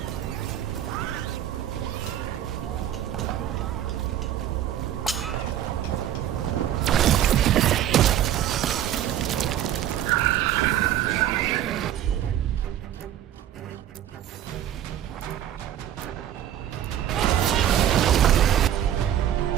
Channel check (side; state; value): left; quieter; 11.2 dB